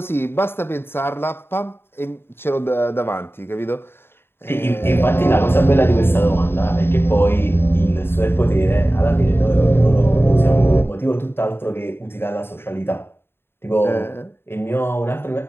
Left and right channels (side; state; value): right; late; 0.11 ms